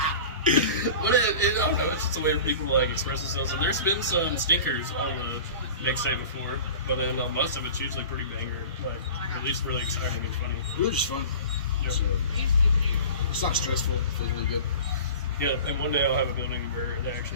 But I don't know. It's just a way for people to like express themselves. And there's been some stinkers on the mixtape before, but then most of it's usually pretty banger, like at least really exciting and funny. It was just fun. Yep. So, it's not stressful. It feels really good. Yeah, and one day I'll have a building where they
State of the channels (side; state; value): both; inverted; correlation -0.38